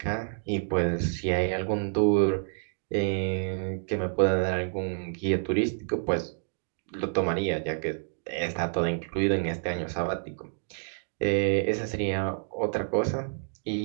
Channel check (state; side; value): silent; left; digital silence